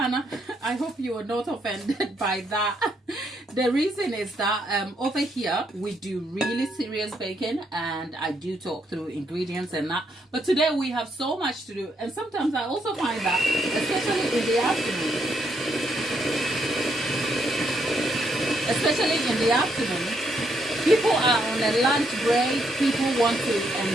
I hope you are not offended by that. The reason is that over here, we do really serious baking, and I do talk through ingredients and that. But today we have so much to do, and sometimes I also find that, especially in the afternoon, people are on a lunch break, people want to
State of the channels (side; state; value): both; normal; correlation 0.75